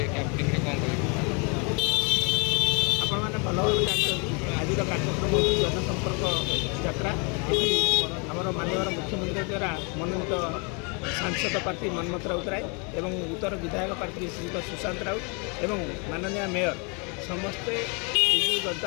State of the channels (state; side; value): quieter; right; 33.9 dB